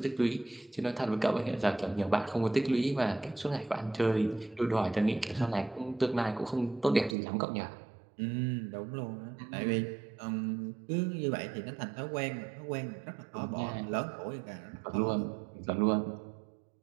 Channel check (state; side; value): drops out; left; at 7.2 s